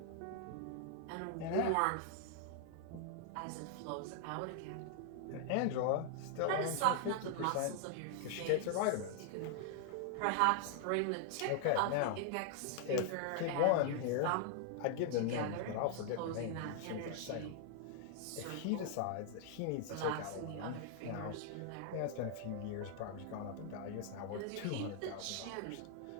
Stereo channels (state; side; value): different; both; correlation 0.00